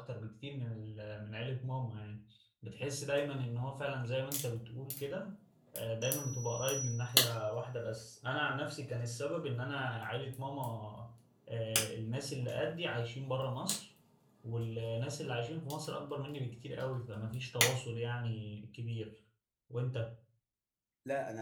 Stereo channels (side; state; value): both; identical; correlation 1.00